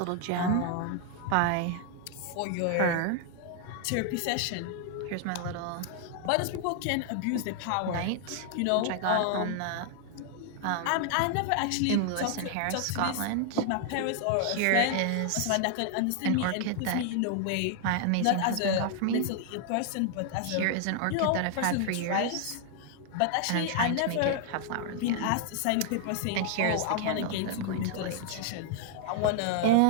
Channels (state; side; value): different; both; correlation 0.00